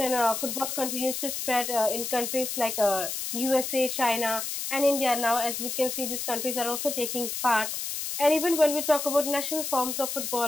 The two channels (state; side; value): noise; left; hiss, 4 dB below the sound